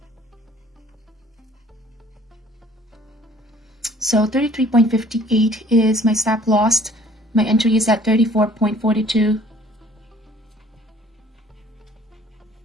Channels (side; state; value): both; normal; correlation 0.55